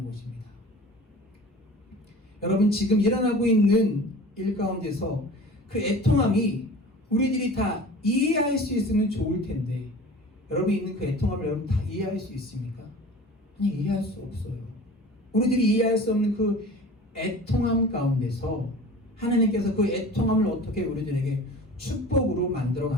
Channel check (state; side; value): normal; both; correlation 0.40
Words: 것입니다. 여러분 지금 일어나고 있는 일 가운데서 그 애통함이 우리들이 다 이해할 수 있으면 좋을 텐데, 여러분이 있는 그 애통함을 여러분 다 이해할 수 있습니까? 아니, 이해할 수 없어요. 우리들이 이해할 수 없는 그 애통함 가운데서 하나님께서 그 애통함을 어떻게 우리들에게 축복으로 만들어